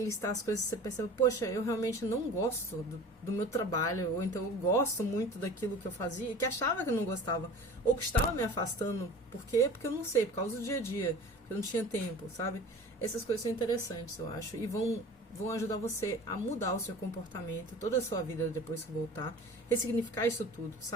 listar as coisas que você percebe, poxa, eu realmente não gosto do meu trabalho, ou então eu gosto muito daquilo que eu fazia, e que achava que eu não gostava, ou que estava me afastando. Por quê? Porque eu não sei, por causa do dia a dia, porque eu não tinha tempo, sabe? Essas coisas são interessantes, eu acho, e vão ajudar você a mudar o seu comportamento, toda a sua vida depois que voltar, ressignificar isso tudo,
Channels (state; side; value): normal; both; correlation 0.40